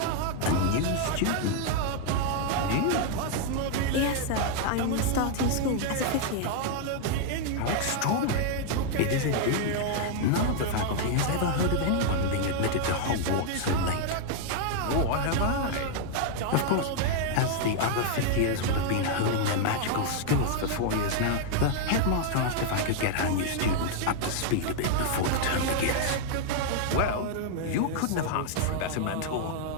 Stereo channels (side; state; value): both; different; correlation 0.00